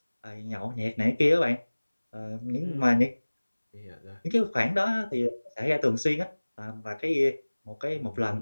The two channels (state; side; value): inverted; both; correlation -1.00